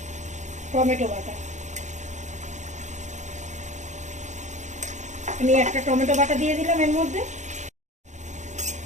টমেটো বাটা। আমি একটা টমেটো বাটা দিয়ে দিলাম এর মধ্যে।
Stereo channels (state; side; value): late; left; 0.35 ms